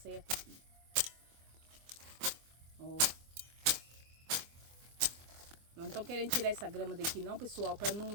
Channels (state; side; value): late; left; 24 ms